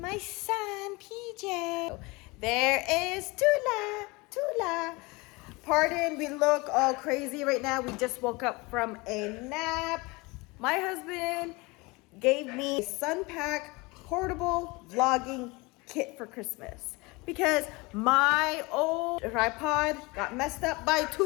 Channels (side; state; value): right; quieter; 24.9 dB